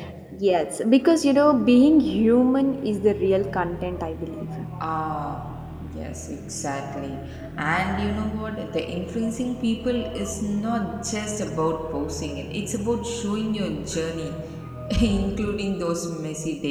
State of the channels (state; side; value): identical; both; correlation 1.00